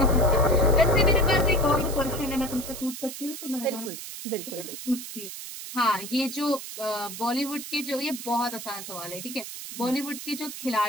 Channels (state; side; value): noise; right; hiss, 10 dB below the sound